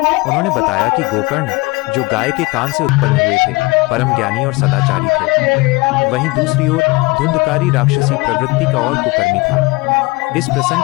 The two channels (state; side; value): quieter; right; 23.7 dB